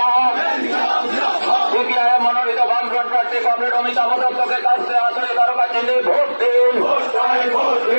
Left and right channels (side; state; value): both; inverted; correlation -1.00